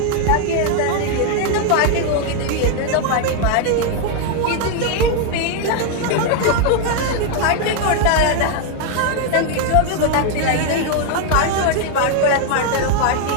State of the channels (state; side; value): different; both; correlation 0.00